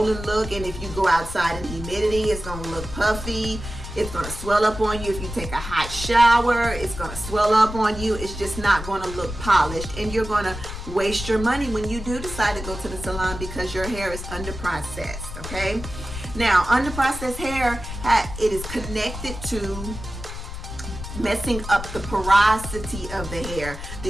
look, and if you go outside in humidity, it's going to look puffy. It's going to swell up on you. If you take a hot shower, it's going to swell up on you. It's just not going to look polished, and you're going to waste your money when you do decide to go to the salon because your hair is under-processed, okay? Now, under-processed hair, it is connected to messing up the porosity of the hair,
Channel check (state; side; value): noise; left; rumble, 9 dB below the sound